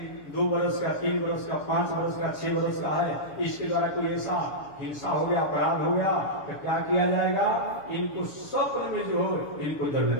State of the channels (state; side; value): late; right; 7.0 ms